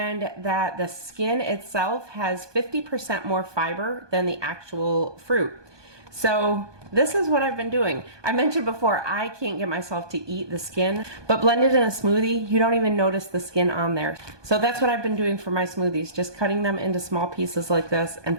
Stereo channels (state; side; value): late; left; 1.2 ms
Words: that the skin itself has 50% more fiber than the actual fruit. So this is what I've been doing. I mentioned before, I can't get myself to eat the skin, but blended in a smoothie, you don't even notice the skin on there. So that's what I've been doing for my smoothies, just cutting them into small pieces like this and